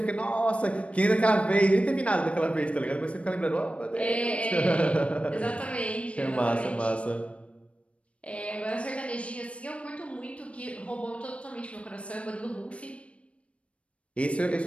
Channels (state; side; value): late; right; 0.062 ms